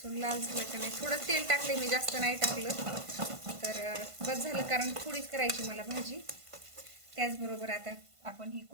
लाल झालं का नाही. थोडं तेल टाकले मी, जास्त नाही टाकलं तर बस झालं, कारण थोडीच करायची मला भाजी. त्याचबरोबर आता आपण ही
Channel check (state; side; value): late; left; 1.5 ms